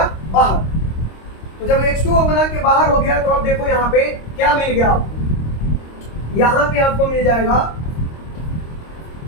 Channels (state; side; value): late; right; 26 ms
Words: बाहर। तो जब H2O बना के बाहर हो गया तो अब देखो यहाँ पे क्या मिल गया आपको, यहां पे आपको मिल जाएगा